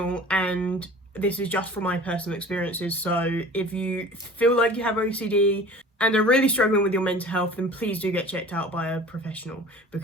and this is just from my personal experiences. So if you feel like you have OCD and are really struggling with your mental health, then please do get checked out by a professional,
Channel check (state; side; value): normal; both; correlation 0.43